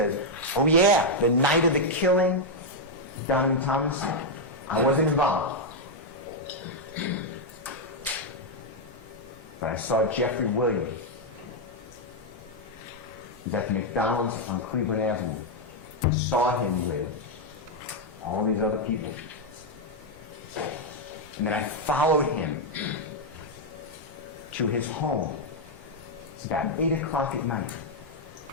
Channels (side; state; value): both; normal; correlation 0.00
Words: oh yeah, the night of the killing, Donovan Thomas, I wasn't involved. But I saw Jeffrey Williams. He's at the McDonald's on Cleveland Avenue. I saw him with all these other people. And then I followed him to his home. It's about 8 o'clock at night.